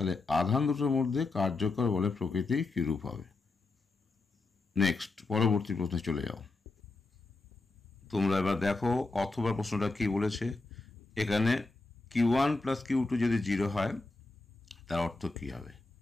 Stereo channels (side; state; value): right; quieter; 3.4 dB